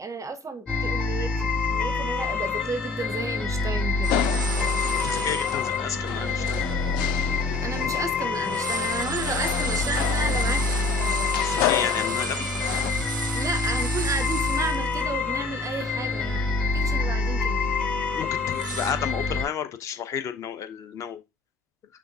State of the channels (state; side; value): quieter; right; 3.1 dB